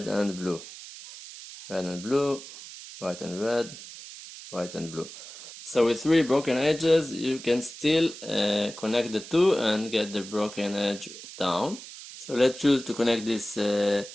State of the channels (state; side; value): noise; right; hiss, 14 dB below the sound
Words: and blue, red and blue, white and red, white and blue. So with three broken edges you can still connect the two and get the broken edge down. So let's choose to connect this